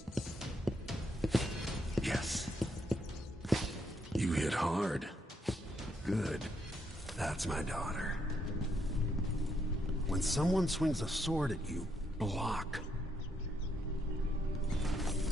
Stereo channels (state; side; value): normal; both; correlation 0.76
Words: Yes. You hit hard. Good. That's my daughter. When someone swings a sword at you, block.